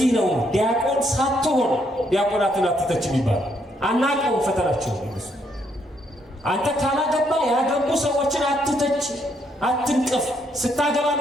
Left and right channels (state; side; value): normal; both; correlation 0.73